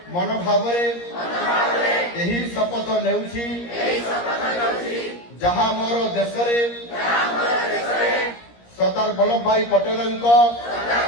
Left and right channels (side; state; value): right; late; 17 ms